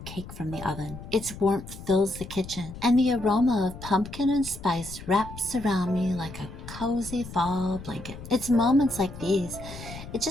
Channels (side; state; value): left; noise; rumble, 13 dB below the sound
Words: cake from the oven. Its warmth fills the kitchen, and the aroma of pumpkin and spice wraps around me like a cozy fall blanket. It's moments like these, it